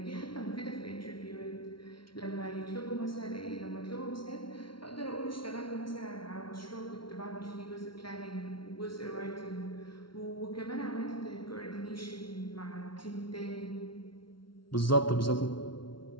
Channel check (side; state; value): right; late; 0.74 ms